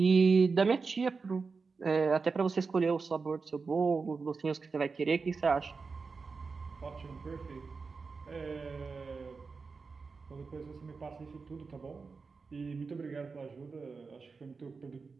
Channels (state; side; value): quieter; left; 4.6 dB